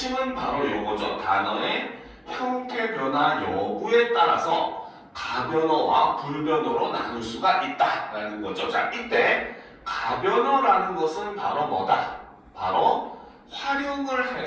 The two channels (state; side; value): identical; both; correlation 1.00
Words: 바로 요거죠. 단어의 형태 변화 여부에 따라서 가변어와 불변어로 나눌 수가 있다라는 거죠. 자, 이때 가변어라는 것은 바로 뭐다? 바로 활용을